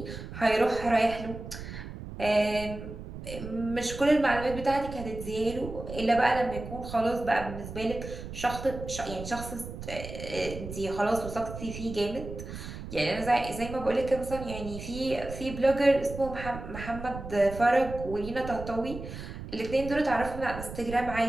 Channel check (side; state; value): right; noise; rumble, 10 dB below the sound